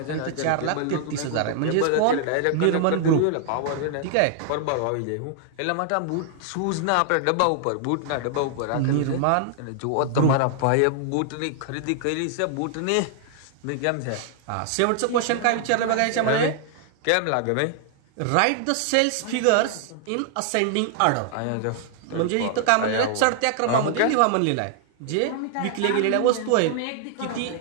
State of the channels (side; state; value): both; different; correlation 0.00